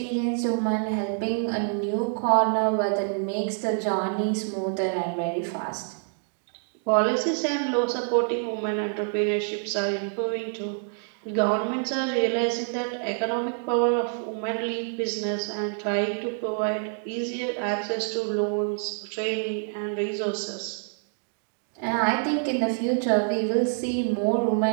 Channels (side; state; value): left; silent; 60 dB below the other